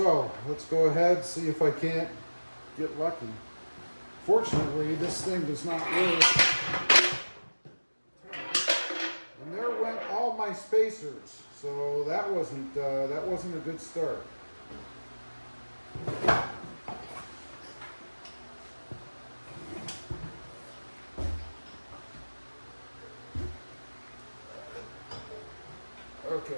let's go ahead and see if I can't get lucky. Fortunately, this thing does not work. And there went all my spacers, so that wasn't a good start. Okay.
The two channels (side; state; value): both; inverted; correlation -1.00